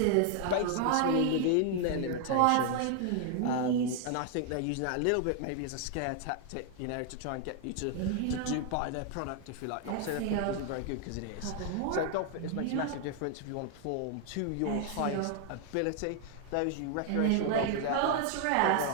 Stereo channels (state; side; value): different; both; correlation 0.00